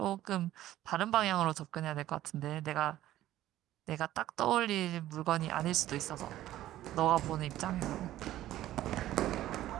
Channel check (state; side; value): quieter; left; 14.0 dB